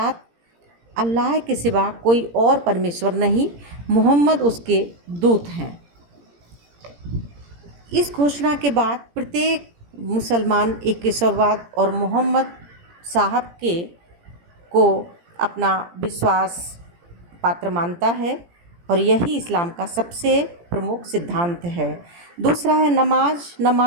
अल्लाह के सिवा कोई और परमेश्वर नहीं, मोहम्मद उसके दूत हैं। इस घोषणा के बाद प्रत्येक मुसलमान एक ईश्वरवाद और मोहम्मद साहब को अपना विश्वास पात्र मानता है और यही इस्लाम का सबसे प्रमुख सिद्धांत है। दूसरा है नमाज।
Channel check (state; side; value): late; left; 17 ms